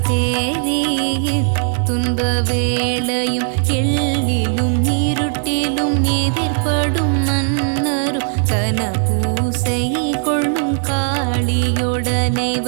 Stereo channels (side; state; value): left; silent; 68 dB below the other